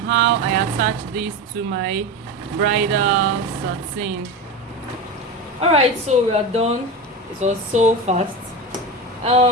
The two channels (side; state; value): both; normal; correlation 0.23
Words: I attach this to my bridal satin. Alright, so we are done. It was so fast.